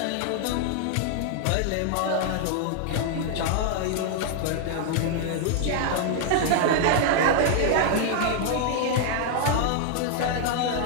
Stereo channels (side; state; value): both; different; correlation 0.00